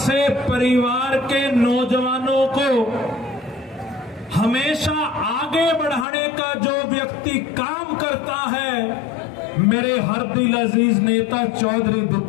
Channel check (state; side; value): drops out; right; at 6.1 s